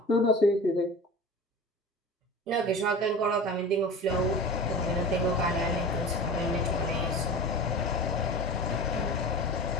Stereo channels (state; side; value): normal; both; correlation 0.34